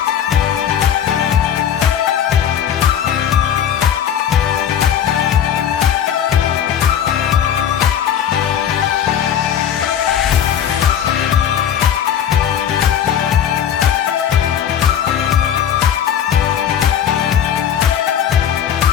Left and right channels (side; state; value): right; quieter; 9.2 dB